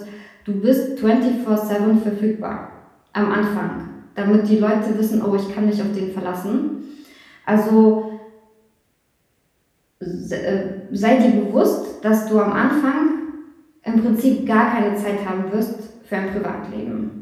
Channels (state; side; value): identical; both; correlation 1.00